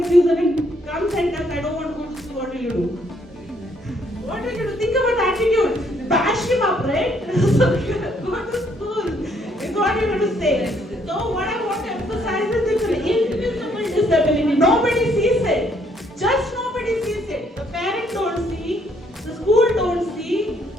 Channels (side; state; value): both; normal; correlation 0.68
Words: and comes and says, I don't want to go to school, what will you do? What will you do? Think about attitude. Bash him up, right? So go to school. Is what you're going to say. So what I want to emphasize is it's an invisible disability. Nobody sees it. Just nobody sees it. The parents don't see, the school don't see,